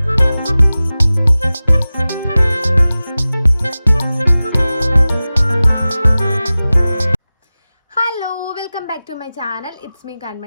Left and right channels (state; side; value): inverted; both; correlation -0.97